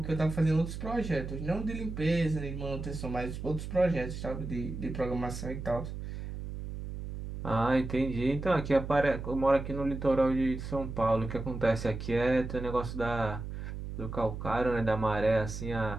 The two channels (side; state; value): right; noise; hum, 7 dB below the sound